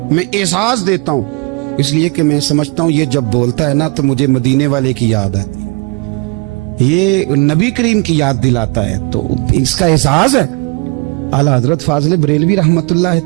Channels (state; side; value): quieter; left; 28.1 dB